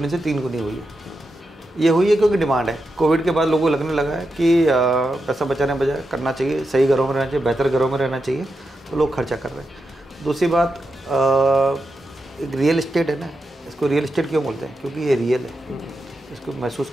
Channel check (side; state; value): both; normal; correlation 0.88